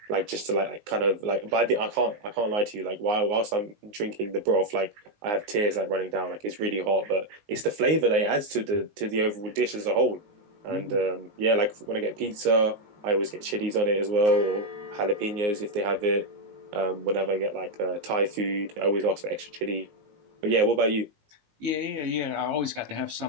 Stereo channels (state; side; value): late; left; 19 ms